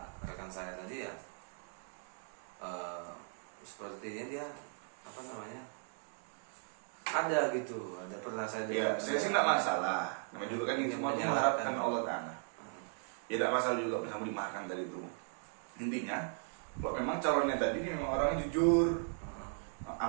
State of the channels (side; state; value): left; silent; 53 dB below the other